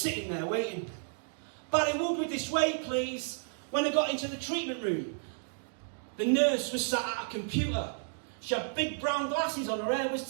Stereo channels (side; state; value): left; silent; digital silence